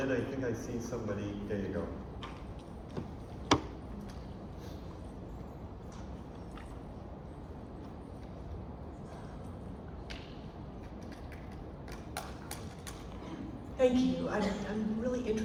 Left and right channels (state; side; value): identical; both; correlation 1.00